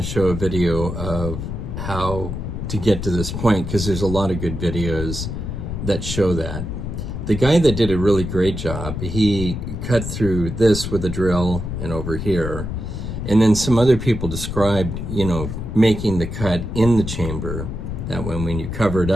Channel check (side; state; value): left; noise; rumble, 5 dB below the sound